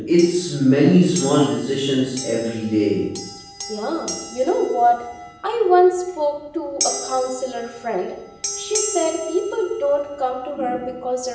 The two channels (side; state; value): both; identical; correlation 1.00